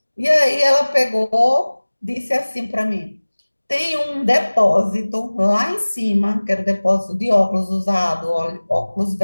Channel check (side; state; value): both; inverted; correlation -1.00